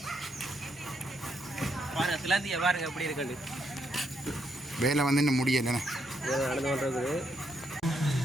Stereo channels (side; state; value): both; normal; correlation 0.77